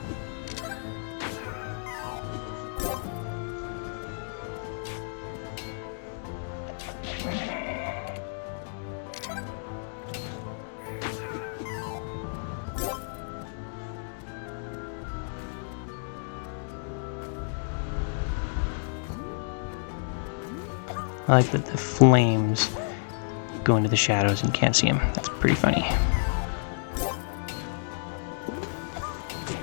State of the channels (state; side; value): silent; right; digital silence